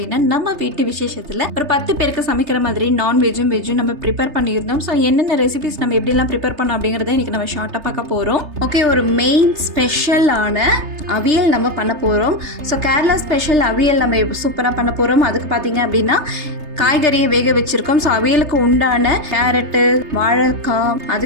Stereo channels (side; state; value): left; late; 3.3 ms